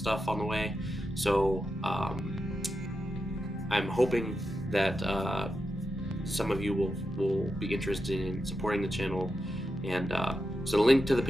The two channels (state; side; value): normal; both; correlation 0.88